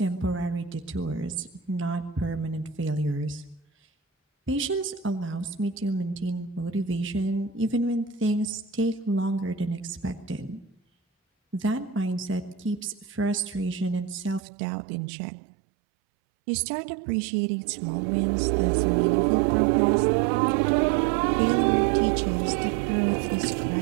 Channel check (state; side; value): drops out; left; at 14.4 s